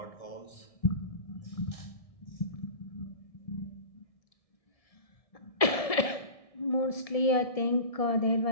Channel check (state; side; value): late; right; 1.7 ms